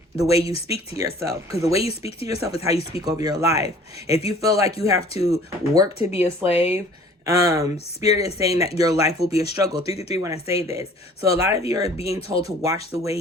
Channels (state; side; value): normal; both; correlation 0.51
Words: the way you speak to yourself, because the way you speak to yourself is how you speak over your life. If you feel like you have to work to be a slave, Spirit is saying that your life will be a struggle. 333 when I say this. So a lot of you are being told to watch the way